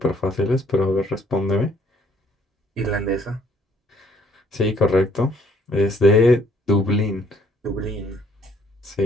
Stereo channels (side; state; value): both; normal; correlation 0.64